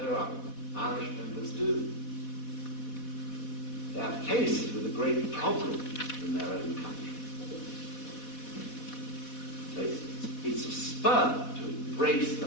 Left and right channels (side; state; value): right; late; 4.1 ms